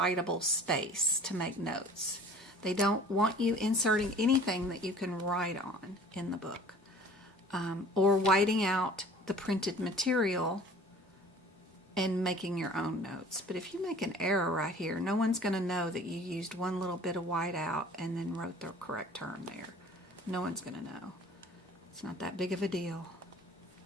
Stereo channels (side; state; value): both; normal; correlation 0.48